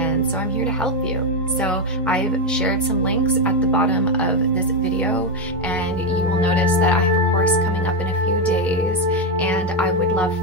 so I'm here to help you. So I've shared some links at the bottom of this video, and you will notice that I have a course coming up in a few days, and I would love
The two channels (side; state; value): both; normal; correlation 0.06